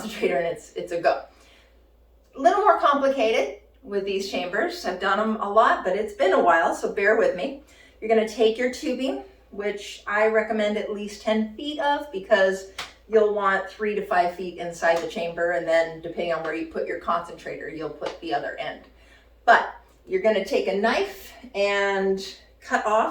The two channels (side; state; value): both; identical; correlation 1.00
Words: and it's a go. A little more complicated with these chambers. I've done them a lot, but it's been a while, so bear with me. You're going to take your tubing, which I recommend at least 10 feet of, because you'll want 3 to 5 feet inside the chamber, and then depending on where you put your concentrator, you'll put the other end. But you're going to take a knife and cut